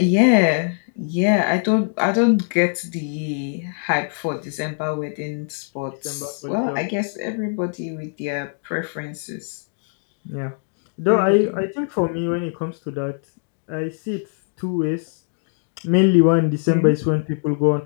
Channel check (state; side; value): silent; right; digital silence